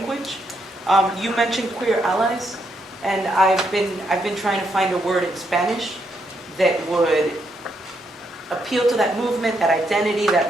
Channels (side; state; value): both; normal; correlation 0.77